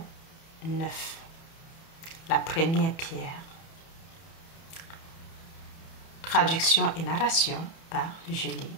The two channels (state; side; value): late; right; 30 ms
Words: 9, la première pierre. Traduction et narration par Julie